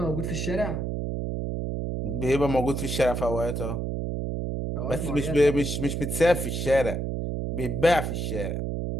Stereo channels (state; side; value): noise; right; hum, 2 dB below the sound